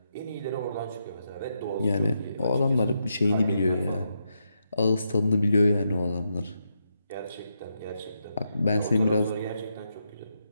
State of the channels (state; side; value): inverted; both; correlation -0.83